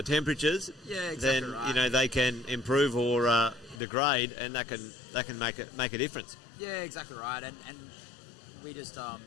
temperatures. Yeah, exactly Then right. they can improve or degrade, and that can make a difference. Yeah, exactly right. And we just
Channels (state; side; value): drops out; right; at 3.8 s